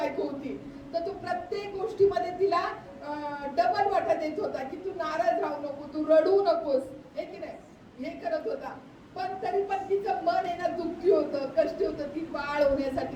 होती. तर तो प्रत्येक गोष्टीमध्ये तिला डबल वाटा देत होता की तू नाराज राहू नको, तू रडू नकोस, हे की नाही, हे करत होता. पण तरी पण तिचं मन आहे ना दुःखी होतं, कष्टी होतं, ती बाळ होण्यासाठी,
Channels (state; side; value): identical; both; correlation 1.00